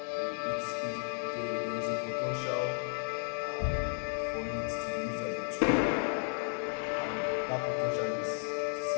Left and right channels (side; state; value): right; silent; 55 dB below the other